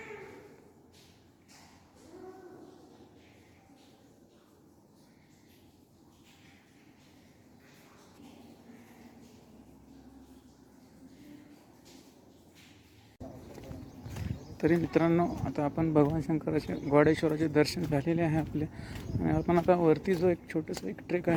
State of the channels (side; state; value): both; identical; correlation 1.00